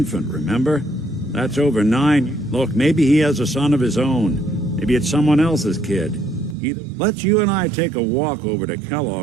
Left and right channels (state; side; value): drops out; left; at 6.6 s